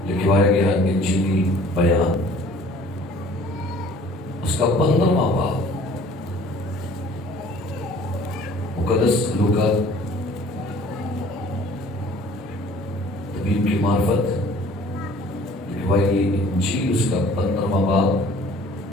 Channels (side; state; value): both; normal; correlation 0.52